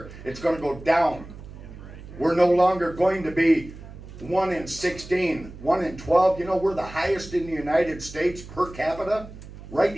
It's gonna go down. We're no longer going to be 1 in 16, 1 in 12. You know, we're the highest in the United States per capita, right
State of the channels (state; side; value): noise; right; hum, 15 dB below the sound